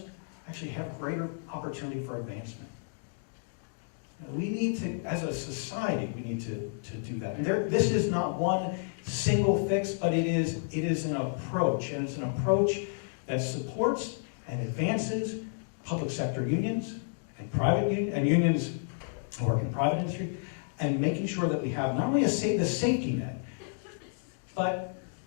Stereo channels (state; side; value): silent; right; digital silence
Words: actually have greater opportunity for advancement. We need to, as a society, we need to do that. And this is not one single fix, but it is an approach, and it's an approach that supports and advances public sector unions and unions who work in private industry, and making sure that we have not only the safety net, but